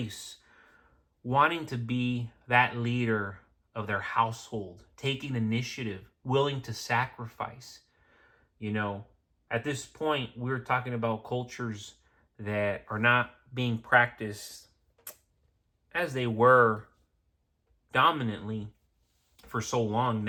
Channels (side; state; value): both; identical; correlation 1.00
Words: wanting to be that leader of their household, taking initiative, willing to sacrifice. At this point, we're talking about cultures that are not being practiced as they were dominantly for so long